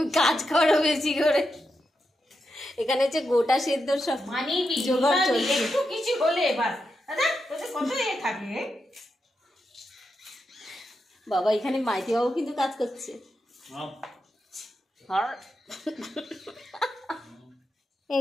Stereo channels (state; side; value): normal; both; correlation 0.86